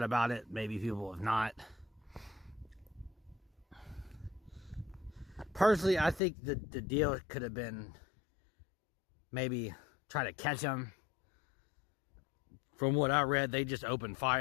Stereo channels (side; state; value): right; drops out; at 6.2 s